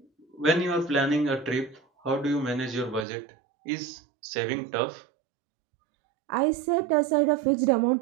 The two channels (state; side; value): drops out; left; at 3.1 s